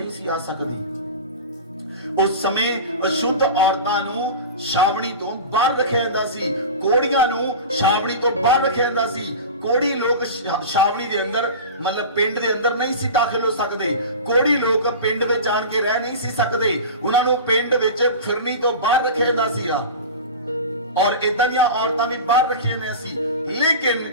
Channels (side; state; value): both; inverted; correlation -0.31